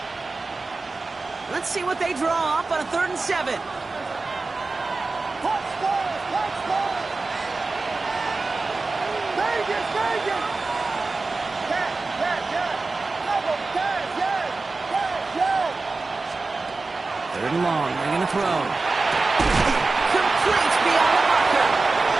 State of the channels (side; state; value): left; quieter; 3.7 dB